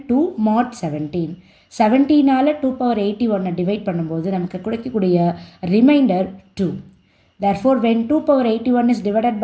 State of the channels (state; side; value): identical; both; correlation 1.00